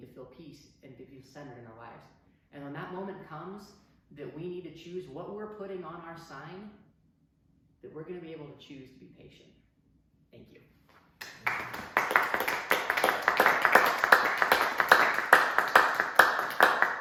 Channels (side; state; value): both; identical; correlation 1.00